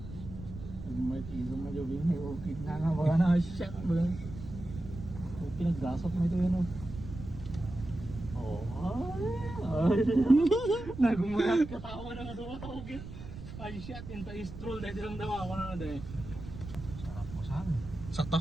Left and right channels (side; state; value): right; noise; rumble, 12 dB below the sound